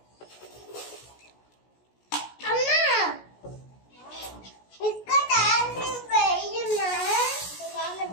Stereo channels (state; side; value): late; right; 16 ms